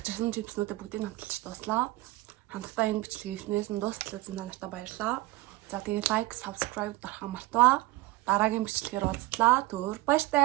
чипснуудаа бүгдийг хамталж дууслаа. Хамтдаа энэ бичлэгийг эхнээс нь дуустал үзсэн та нартай баярлалаа. За тэгээ лайк, subscribe дарахаа мартаваа. Дараагийн бичлэгээр уулзлаа. Түр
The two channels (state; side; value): quieter; left; 19.1 dB